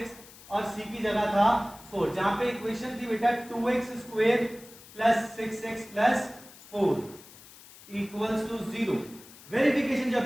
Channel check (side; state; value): left; noise; hiss, 20 dB below the sound